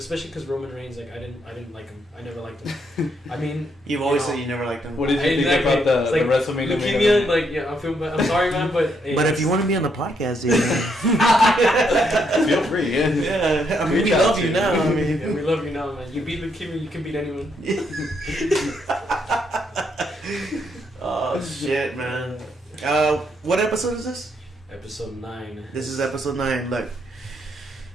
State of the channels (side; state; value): both; normal; correlation 0.75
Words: because Roman Reigns, like I didn't like him. I never liked him. I mean, You've always said you never liked him. What did you think about the WrestleMania? Leukemia, like I'm sorry, man, but hey, but if you want to be on the podcast, dude, feel free. Yeah, I mean, we love you now. I mean, yeah, we love you now, man. You beat leukemia, you can beat anyone. Oh shit, man. What episode is this? Episode 9. This is episode 9. Look,